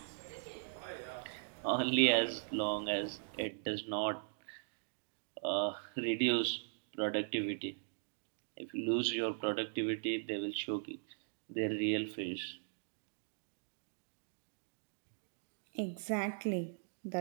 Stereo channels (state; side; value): silent; left; digital silence